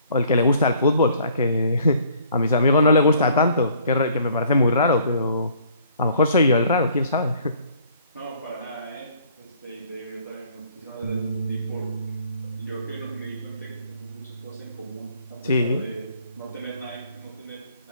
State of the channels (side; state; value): both; inverted; correlation -0.58